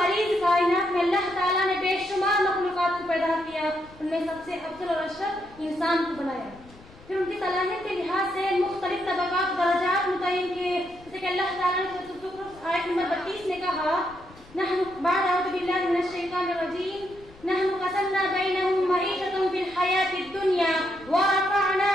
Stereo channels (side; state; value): left; noise; rumble, 23 dB below the sound